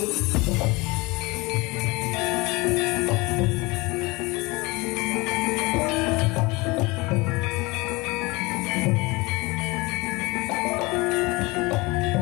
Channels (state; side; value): quieter; right; 24.3 dB